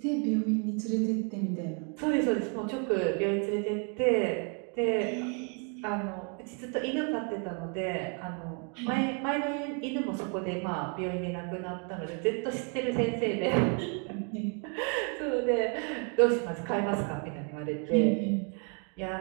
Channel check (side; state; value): left; quieter; 39.0 dB